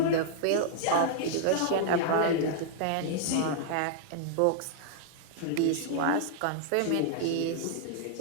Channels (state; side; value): different; both; correlation -0.01